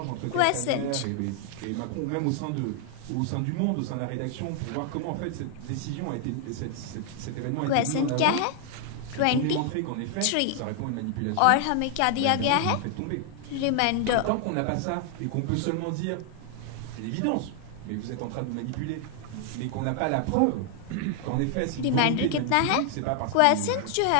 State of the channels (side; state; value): both; different; correlation 0.00